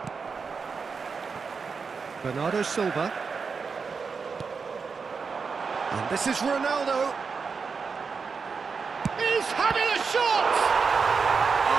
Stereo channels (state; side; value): quieter; left; 5.2 dB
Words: Bernardo Silva. And this is Ronaldo. He's having a shot!